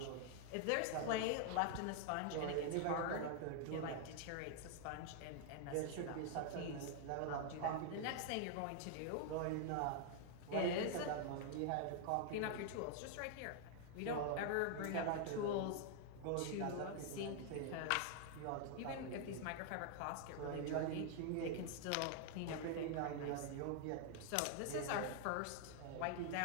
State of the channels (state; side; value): different; both; correlation 0.00